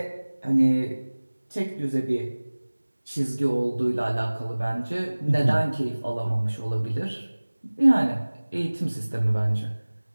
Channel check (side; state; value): both; inverted; correlation -1.00